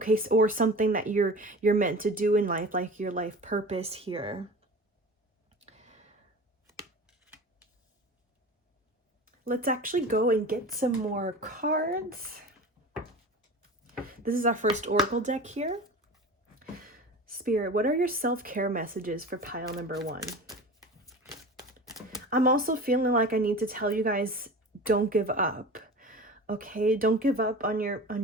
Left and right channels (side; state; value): both; normal; correlation 0.35